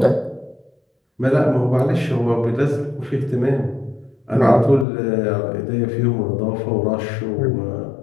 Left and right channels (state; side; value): drops out; right; at 4.9 s